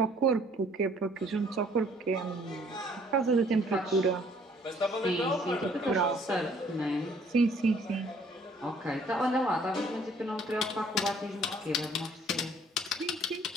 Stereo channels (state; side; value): normal; both; correlation 0.60